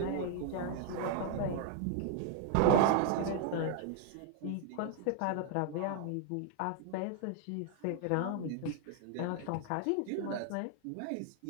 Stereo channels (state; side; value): different; both; correlation 0.00